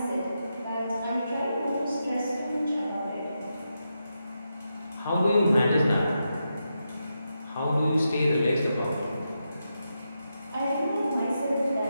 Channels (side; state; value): both; inverted; correlation -0.86